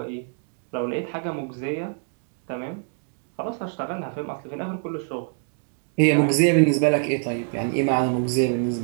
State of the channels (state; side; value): silent; left; 58 dB below the other